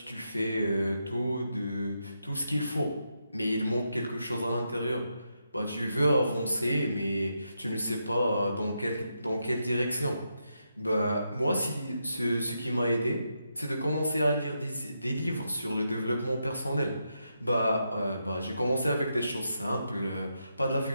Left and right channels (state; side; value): inverted; both; correlation -0.83